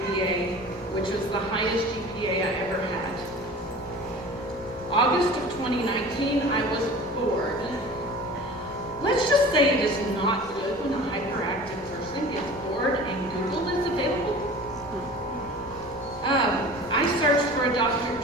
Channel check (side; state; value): left; noise; rumble, 20 dB below the sound